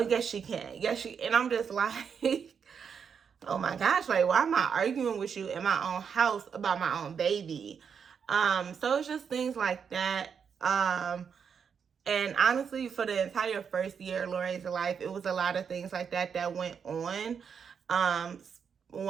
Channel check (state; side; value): quieter; left; 6.8 dB